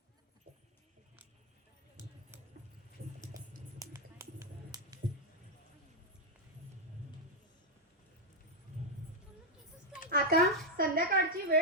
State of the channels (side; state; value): both; normal; correlation 0.00